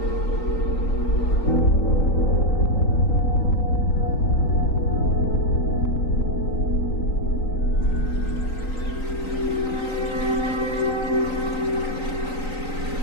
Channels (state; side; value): late; right; 3.9 ms